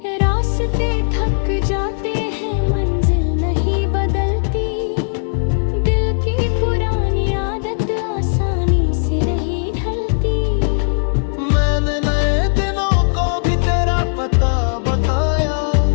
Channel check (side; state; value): right; silent; digital silence